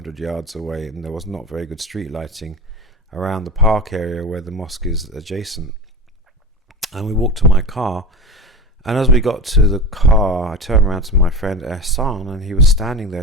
yards away, and there was not very good street lighting around the park area where the mosque is adjacent. And we walked to my car, and as we got to the car, I turned around to my friend Hassan, and he was standing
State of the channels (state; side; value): normal; both; correlation 0.28